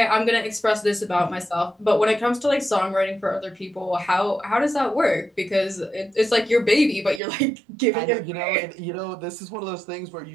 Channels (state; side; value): drops out; left; at 7.2 s